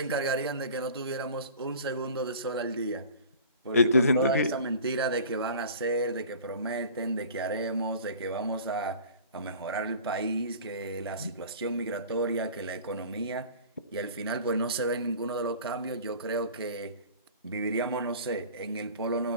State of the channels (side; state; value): both; inverted; correlation -0.43